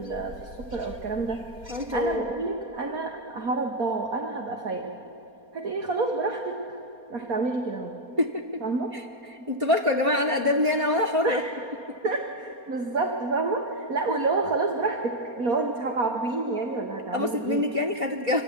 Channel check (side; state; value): left; late; 4.3 ms